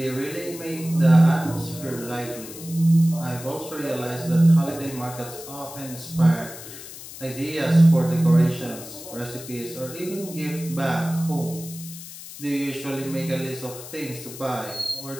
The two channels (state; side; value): noise; left; hiss, 14 dB below the sound